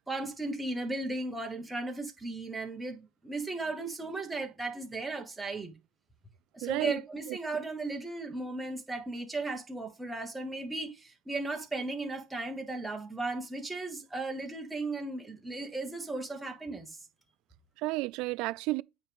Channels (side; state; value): left; quieter; 3.8 dB